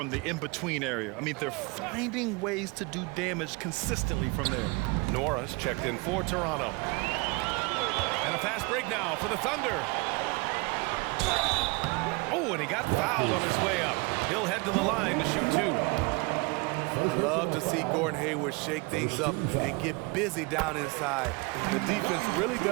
the in-between area. I mean, they're finding ways to do damage consistently from there. Nora's checked in for Toronto. And a fast break now for the Thunder. Oh, and he got fouled on his way up. He'll head to the line to shoot 2. Love to see Gordon Hayward shake things up and get busy down inside. The defense really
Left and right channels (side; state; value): left; quieter; 27.3 dB